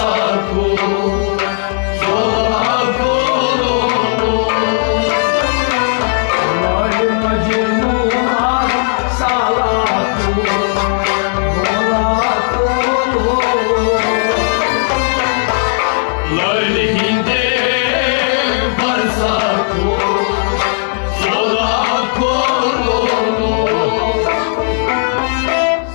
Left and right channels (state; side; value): silent; right; digital silence